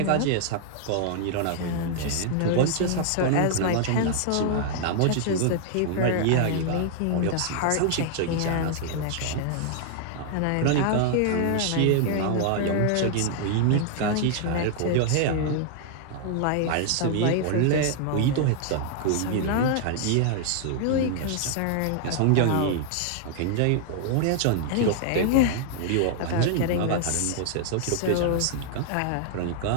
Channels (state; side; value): different; both; correlation 0.00